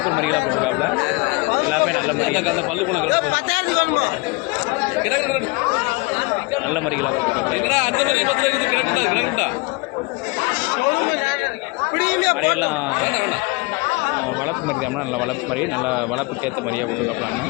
மரிகளாக போட்டிருக்காப்புல. எல்லாமே நல்ல மரிகள், அந்த பல்லு குணங்கள் நல்ல மரிகளாக போட்டிருக்காப்புல. மரியெல்லாம் வளர்ப்பு மரி தான், நல்ல வளர்ப்பு மரி, நல்ல வளர்ப்புக்கேற்ற மரியாக போட்டிருக்காப்புலான்னு.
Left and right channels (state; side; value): quieter; right; 25.8 dB